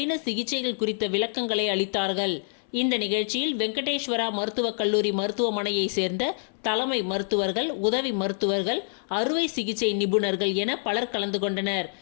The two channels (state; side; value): silent; right; 61 dB below the other